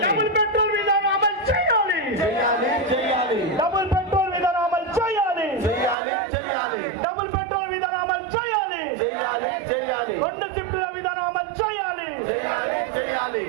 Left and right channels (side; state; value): left; drops out; at 6.0 s